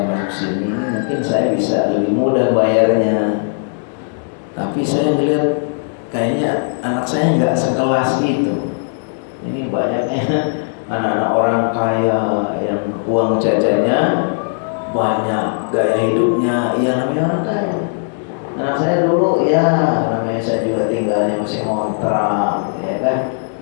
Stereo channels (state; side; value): silent; right; 68 dB below the other